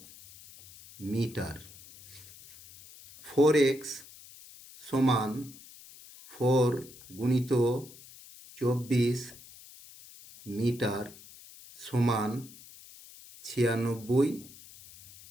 মিটার। 4x সমান 4 গুণিত 24 মিটার সমান 96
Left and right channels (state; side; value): noise; left; hiss, 20 dB below the sound